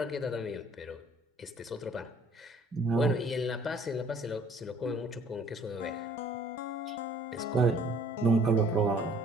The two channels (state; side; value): normal; both; correlation 0.57